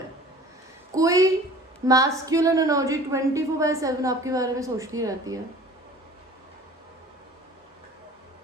कोई मैस्कुलिन एनर्जी 24/7 आपके बारे में सोचती रहती है.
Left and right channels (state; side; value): normal; both; correlation 0.45